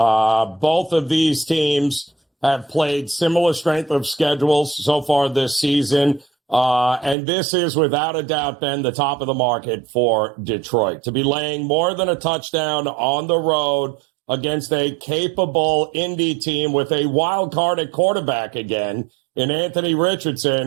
of these teams have played similar strength of schedules so far this season. And this is, without a doubt, Ben, the top of the market for Detroit. To be laying more than a touchdown on the road against a capable Indy team with a wild card at quarterback again in Anthony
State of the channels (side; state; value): left; drops out; at 7.2 s